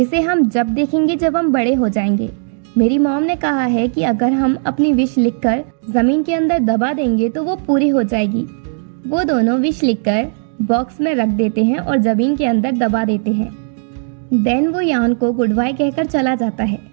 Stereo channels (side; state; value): left; silent; digital silence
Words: हम जब देखेंगे जब हम बड़े हो जाएंगे। मेरी मॉम ने कहा है कि अगर हम अपनी विश लिखकर जमीन के अंदर दबा देंगे तो वो पूरी हो जाएगी। वो दोनों विश लिखकर बॉक्स में रख देते हैं और जमीन के अंदर दबा देते हैं। देन वो यान को गुड बाय कहकर चला जाता है।